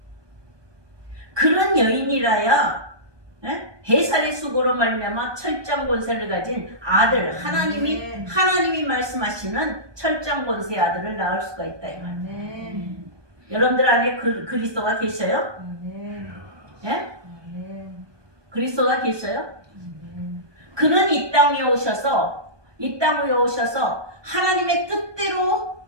그런 여인이라야 해살의 수고로 말미암아 철장 권세를 가진 아들 하나님이 말씀하시는 철장 권세의 아들을 낳을 수가 있다 이 말. 아멘. 여러분들 안에 그리스도가 계셔요? 아멘. 예? 아멘. 그리스도가 계셔요? 아멘. 그는 이 땅에 오셔서 하나님의 뜻대로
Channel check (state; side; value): late; left; 1.2 ms